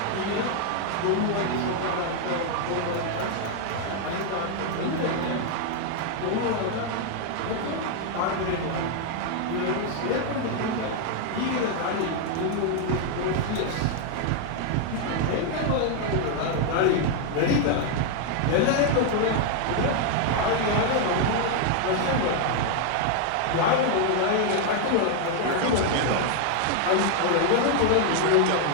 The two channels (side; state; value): both; different; correlation 0.00